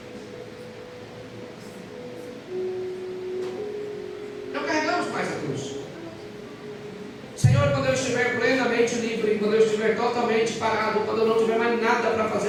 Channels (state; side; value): identical; both; correlation 1.00